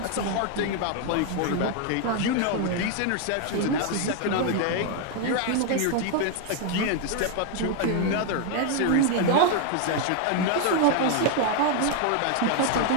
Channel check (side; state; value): both; different; correlation 0.00